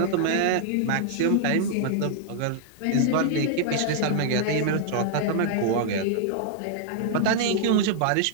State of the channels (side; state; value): both; different; correlation -0.01